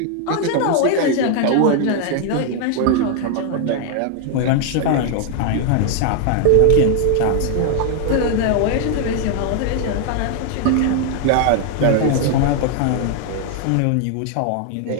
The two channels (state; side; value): different; both; correlation 0.00